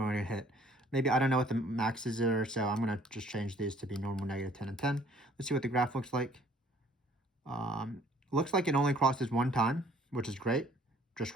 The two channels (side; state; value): both; normal; correlation 0.58